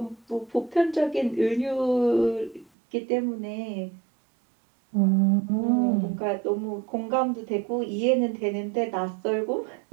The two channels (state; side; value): drops out; left; at 2.7 s